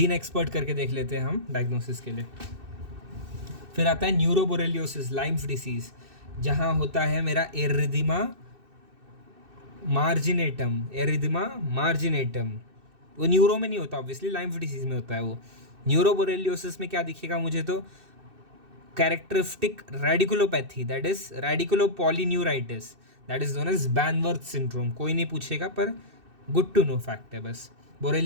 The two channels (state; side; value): late; left; 2.6 ms